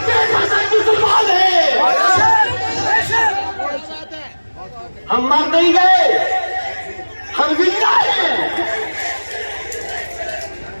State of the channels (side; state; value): both; inverted; correlation -1.00